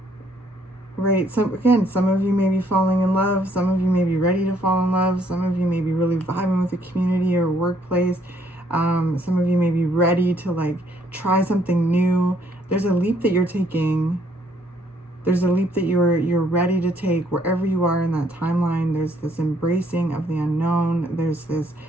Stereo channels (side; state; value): both; normal; correlation 0.67